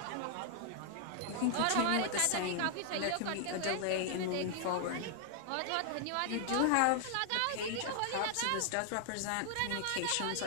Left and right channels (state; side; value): different; both; correlation 0.00